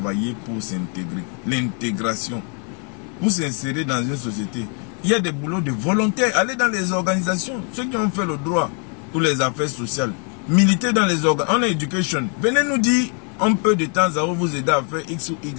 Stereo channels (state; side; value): quieter; right; 39.1 dB